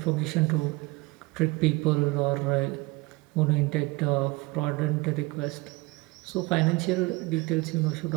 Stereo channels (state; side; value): quieter; left; 23.9 dB